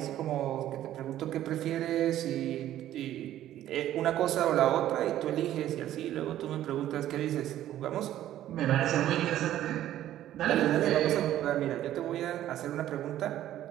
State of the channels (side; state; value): left; quieter; 12.7 dB